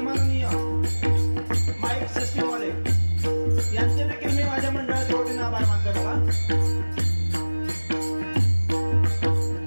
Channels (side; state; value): both; inverted; correlation -1.00